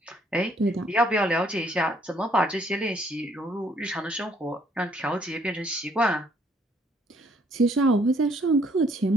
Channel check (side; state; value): both; normal; correlation 0.65